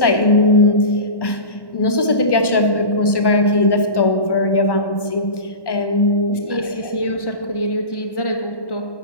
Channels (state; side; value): late; right; 1.1 ms